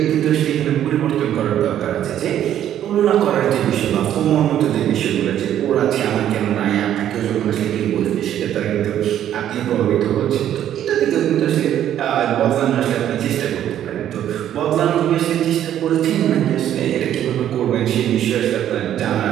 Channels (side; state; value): left; quieter; 11.0 dB